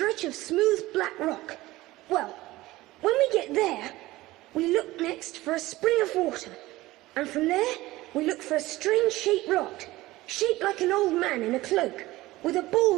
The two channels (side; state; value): left; quieter; 18.2 dB